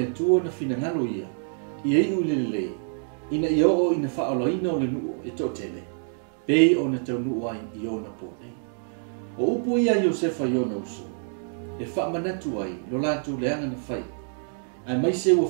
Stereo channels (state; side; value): silent; left; digital silence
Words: tua na finangalo ia. Ia i ulelelei. Ina ia o ina whaoloina o le nuu e totele. Pei o na tau nuu ai i o na pōnei. O upo ia Iosefa i o na uso. E whaamanatu ai lo lātou leanga na whai. Ai mai se ua